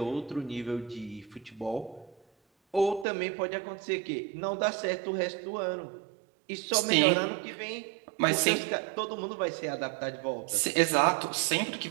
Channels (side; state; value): left; drops out; at 3.1 s